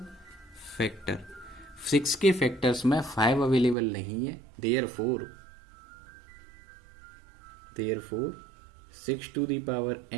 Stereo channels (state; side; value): drops out; left; at 3.8 s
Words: factor. 6 के फैक्टर्स में 5 अवेलेबल नहीं है। Therefore 6 to the power